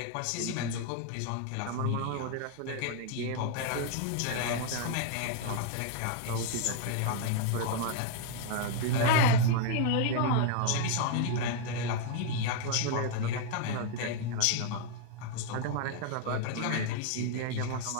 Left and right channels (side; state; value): both; different; correlation 0.00